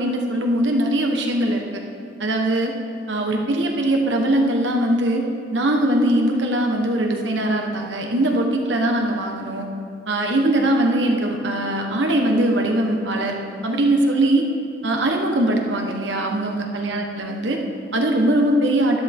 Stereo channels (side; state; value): both; normal; correlation 0.57